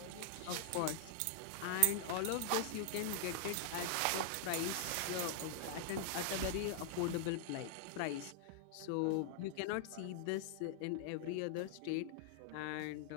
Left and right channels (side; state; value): both; different; correlation 0.00